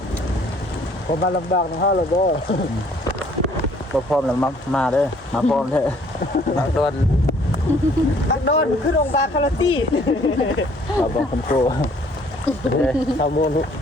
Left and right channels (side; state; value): both; normal; correlation 0.60